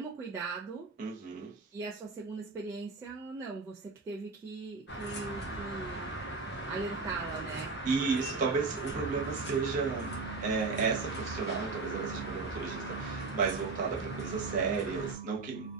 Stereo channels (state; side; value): quieter; left; 4.1 dB